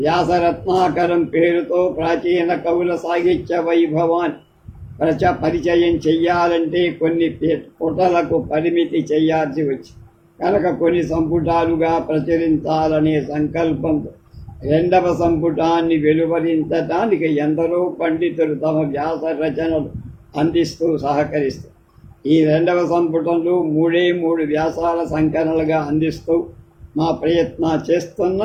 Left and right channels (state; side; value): identical; both; correlation 1.00